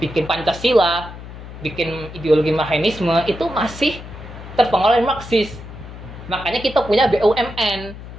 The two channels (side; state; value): left; noise; hum, 13 dB below the sound